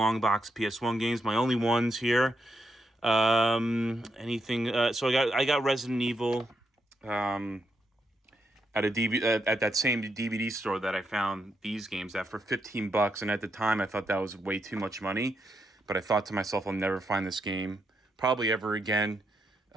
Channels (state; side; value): normal; both; correlation 0.81